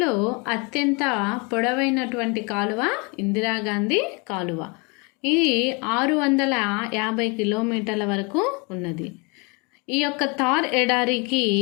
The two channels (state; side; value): quieter; right; 30.6 dB